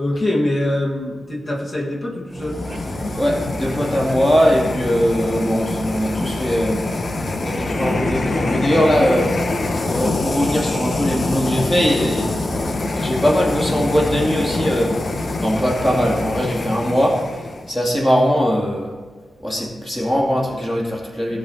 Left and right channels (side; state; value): both; normal; correlation 0.93